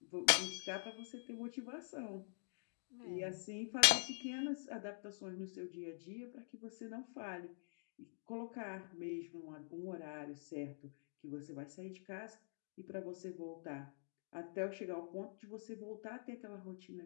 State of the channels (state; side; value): silent; right; digital silence